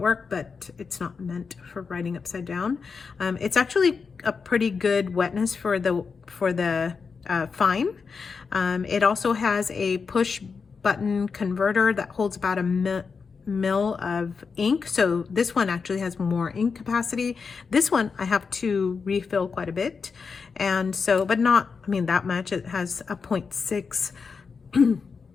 work, but it's not meant for writing upside down. It's actually a pretty good wetness for the fine. It also has a push button converter that holds about a mil of ink. So this one actually has more ink capacity. This one I have to refill quite a bit. And so, but not, I mean, that much. It has a 0.6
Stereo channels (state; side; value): quieter; right; 5.3 dB